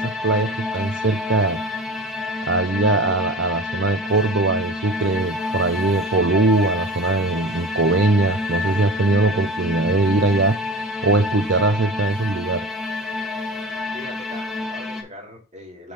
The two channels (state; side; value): normal; both; correlation 0.36